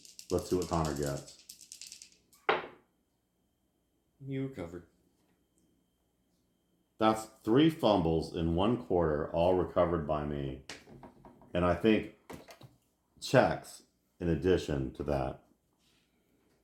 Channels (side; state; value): both; identical; correlation 1.00